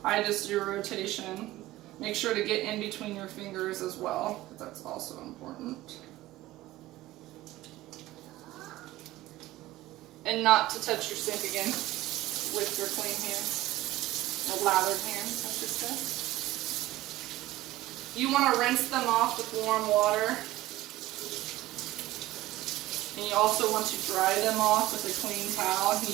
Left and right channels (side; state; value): left; quieter; 16.8 dB